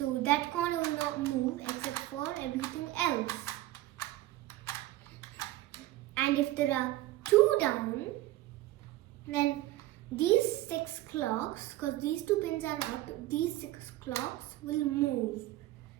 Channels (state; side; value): quieter; left; 16.1 dB